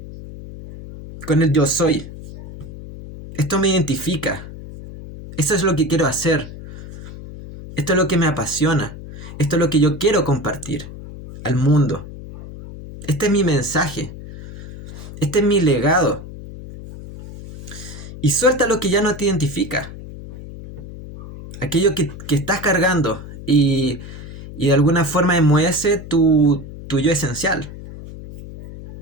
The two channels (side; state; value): left; noise; hum, 13 dB below the sound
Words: con el yo soy. Esto me identifica. Esto es lo que quiero hacer. Esto es lo que me apasiona. Esto es lo que yo quiero compartir. al mundo. Este es mi mensaje. Este es mi legado. Y suelta lo que ya no te identifica. Aquello que estás cargando y de alguna forma enmohece tu yo esencial.